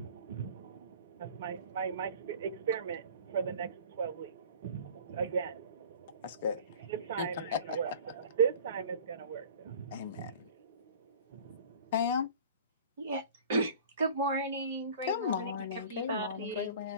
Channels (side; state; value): both; inverted; correlation -0.43